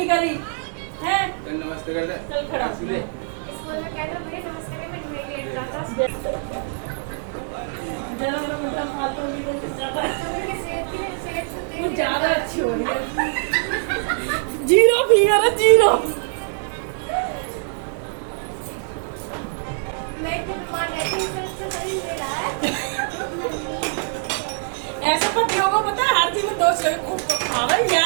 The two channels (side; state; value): left; silent; 63 dB below the other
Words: करी है? नमस्ते कर ले, चल खड़ा। स्कूल में कहता मुझे नमस्ते में तुम्हें लेट जाता। जरा मेरा मतलब फालतू की कोई ज्यादा सेहत वो ज्यादा अच्छी हो रही है। जीरो फिगर है, जीरो। मैं तो बीमार रहती हूँ, इससे शरीर ले रहा है। ऐसे पतियों को पता है हर चीज में दोस्त